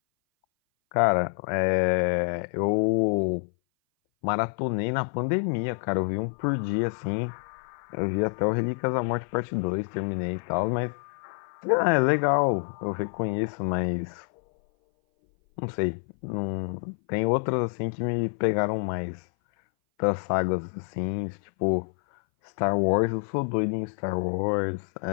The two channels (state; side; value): silent; right; 58 dB below the other